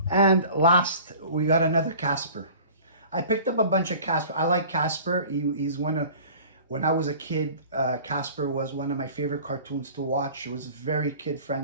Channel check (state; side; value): inverted; both; correlation -0.44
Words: And last, we got another Casper. I picked up a bunch of Casper. I like Casper. He's one of, when I was a kid, Casper was one of my favorite cartoons to watch. It was very kid